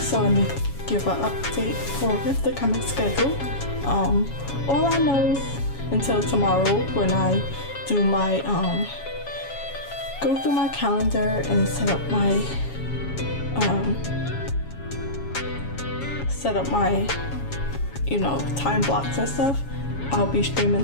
let me give an update for the coming schedule. All I know until tomorrow when I do my go through my calendar and set up my you know, time blocks and stuff. I'll be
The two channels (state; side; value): late; right; 7.2 ms